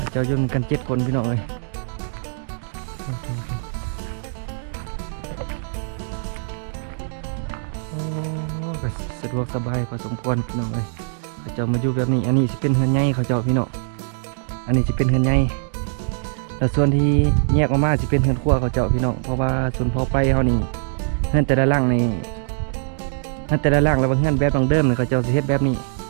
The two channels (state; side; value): silent; left; digital silence